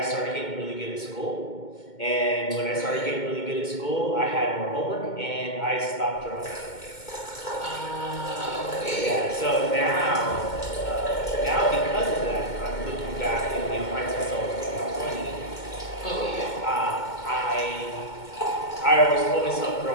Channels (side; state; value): right; late; 2.2 ms